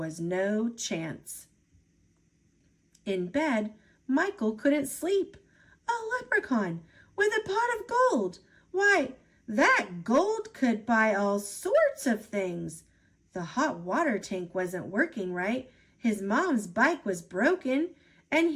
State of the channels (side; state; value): both; identical; correlation 1.00